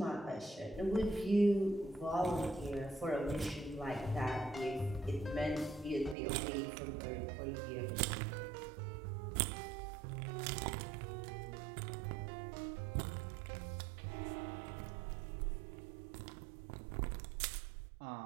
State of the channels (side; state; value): left; drops out; at 6.2 s